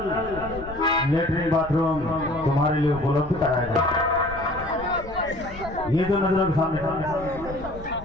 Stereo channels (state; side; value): noise; left; rumble, 14 dB below the sound